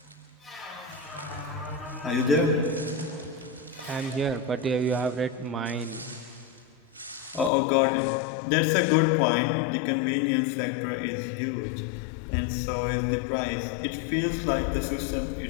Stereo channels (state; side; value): drops out; right; at 7.5 s